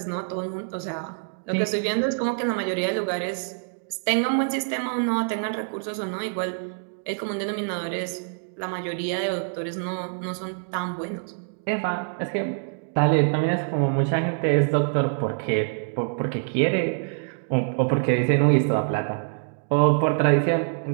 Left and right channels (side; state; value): left; silent; digital silence